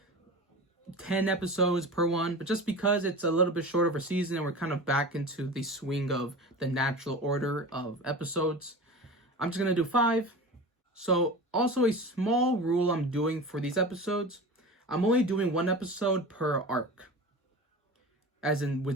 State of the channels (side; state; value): both; normal; correlation 0.32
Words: 10 episodes per one, but just because it's a little bit short of a season and we're kind of back into the swing of the natural order of episodes, I'm just going to do 5. So also a small rule I'm doing for these episodes, I'm only doing 1 episode per arc. as in